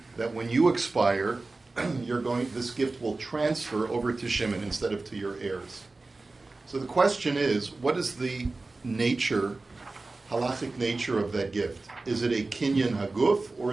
that when you expire, this gift will transfer over to Shimon instead of to your heirs. So the question is, what is the nature, halachic nature of that gift? Is it a kinyan haguf or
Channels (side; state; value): left; quieter; 3.4 dB